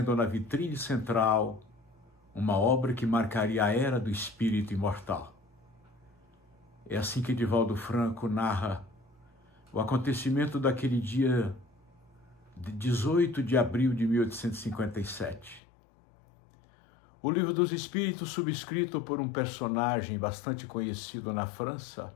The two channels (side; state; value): right; drops out; at 15.6 s